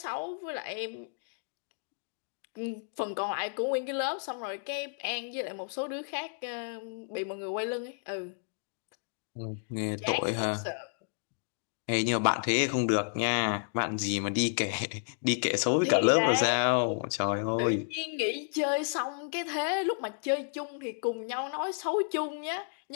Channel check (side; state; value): right; silent; digital silence